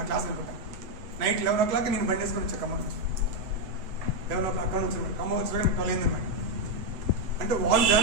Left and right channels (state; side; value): late; left; 7.9 ms